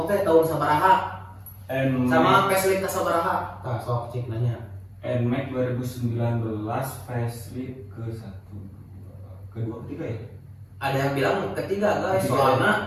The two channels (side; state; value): both; identical; correlation 1.00